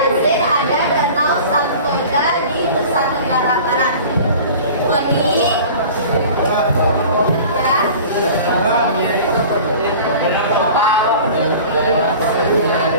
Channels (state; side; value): inverted; both; correlation -0.41